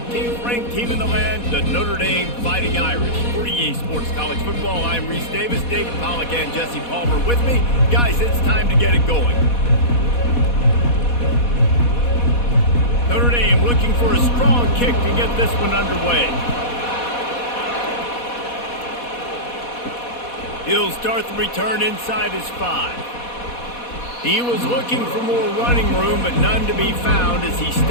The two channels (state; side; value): late; right; 4.1 ms